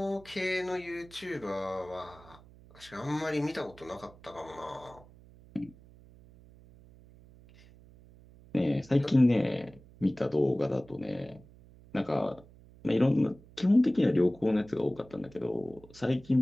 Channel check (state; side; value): noise; right; hum, 23 dB below the sound